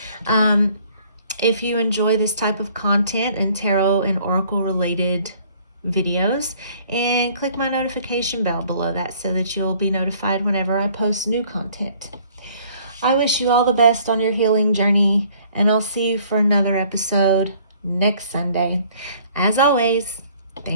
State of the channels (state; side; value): inverted; both; correlation -0.58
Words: If you enjoy this type of content and tarot and oracle related videos, and click my notification bell below that so that you'll be notified whenever I post new content. I wish you all the best on your healing journey, and I'll see you for another episode next Sunday. As always,